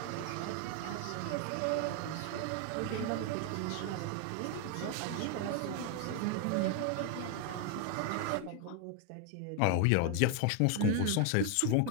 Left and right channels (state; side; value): different; both; correlation 0.01